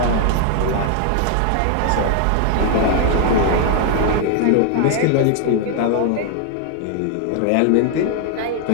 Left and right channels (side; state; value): both; different; correlation 0.00